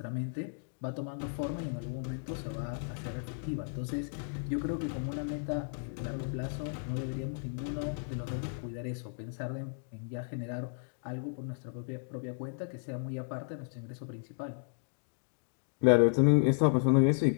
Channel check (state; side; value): silent; right; digital silence